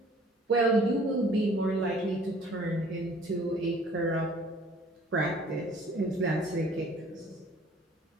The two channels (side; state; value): both; normal; correlation 0.54